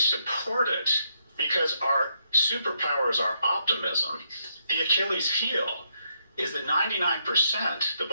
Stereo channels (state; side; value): inverted; both; correlation -0.77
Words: it because our superpower is our optimism. The Achilles heel is that 99%, the